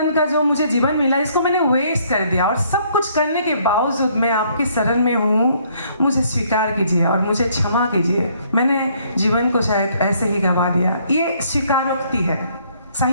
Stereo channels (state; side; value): inverted; both; correlation -0.65